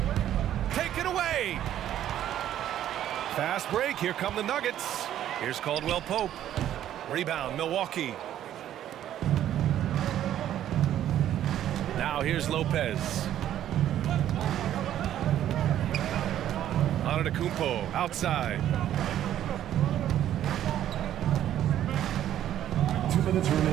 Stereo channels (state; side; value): quieter; left; 11.5 dB